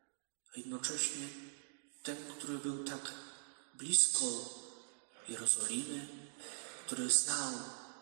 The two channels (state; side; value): silent; left; digital silence